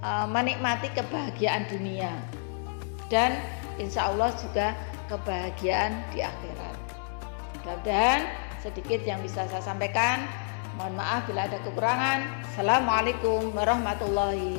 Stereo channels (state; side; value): silent; right; digital silence